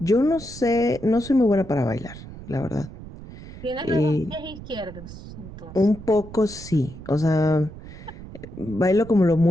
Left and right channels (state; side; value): noise; right; rumble, 14 dB below the sound